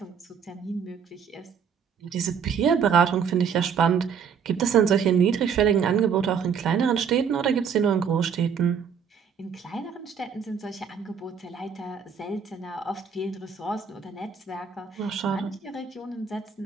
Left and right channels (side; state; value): left; quieter; 6.8 dB